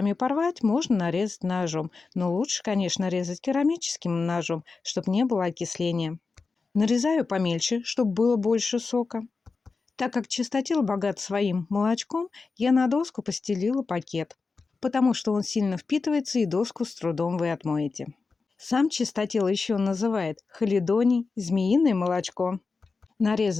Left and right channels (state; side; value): quieter; right; 4.3 dB